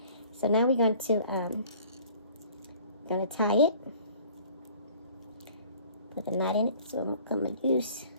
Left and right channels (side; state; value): both; inverted; correlation -0.52